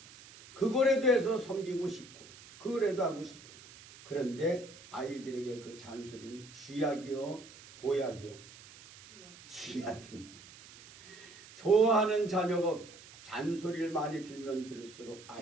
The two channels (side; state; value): right; noise; hiss, 19 dB below the sound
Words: 그거라도 해서 섬기고 싶고 그거라도 하고 싶고. 그런데 아이들에게 그 잔소리는 쥐약이요? 보약이요? 쥐약입니다. 좋아하는 자녀가 없어요. 잔소리를 많이 들면 들을수록